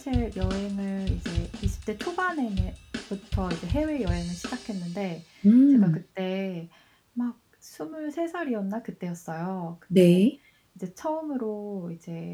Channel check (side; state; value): both; identical; correlation 1.00